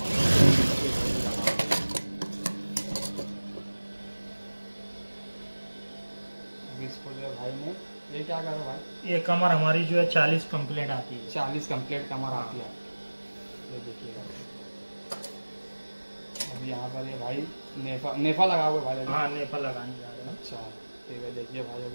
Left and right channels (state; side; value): inverted; both; correlation -1.00